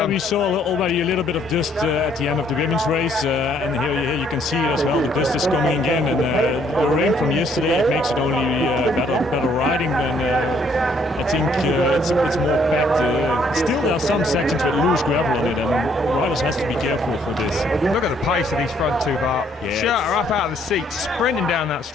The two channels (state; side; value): normal; both; correlation 0.66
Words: we saw already a little bit of dust at the end of the women's race, and here you can see it as well. The dust is coming in, and the rain from yesterday, it makes it only better riding, and I think it's more packed. Still there are some sections with loose gravel on it, and riders has to be careful for this. Look at the pace of these front two, Bart. Yeah, Schurter up out of the seat, sprinting down that